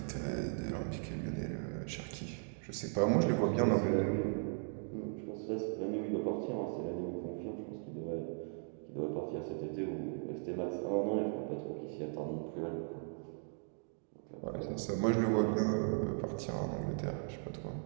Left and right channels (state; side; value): silent; left; 53 dB below the other